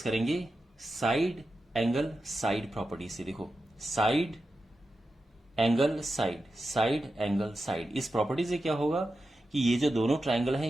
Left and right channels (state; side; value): normal; both; correlation 0.91